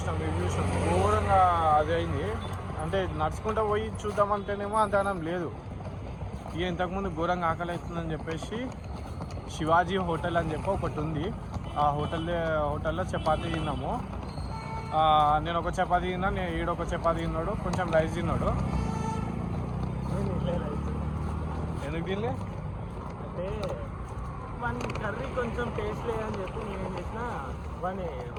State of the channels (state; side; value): identical; both; correlation 1.00